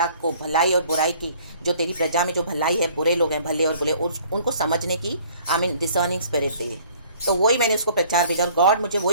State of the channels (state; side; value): inverted; both; correlation -0.55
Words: को भलाई और बुराई की, जो तेरी प्रजा में जो भलाई है, बुरे लोग हैं, भले और बुरे, उनको समझने की आमीन डिसर्निंग स्पिरिट दे। तो वही मैंने उसको प्रचार भेजा और गॉड मुझे